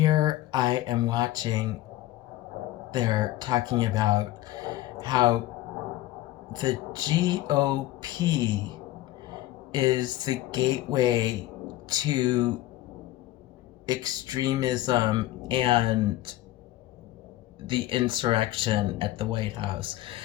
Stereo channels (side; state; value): right; quieter; 15.7 dB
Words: I am watching, they're talking about how the GOP is the gateway to extremism and the insurrection at the White House.